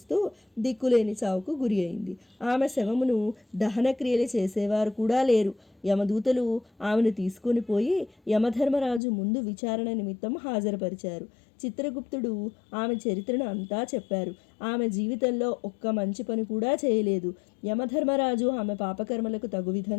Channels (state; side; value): drops out; right; at 9.0 s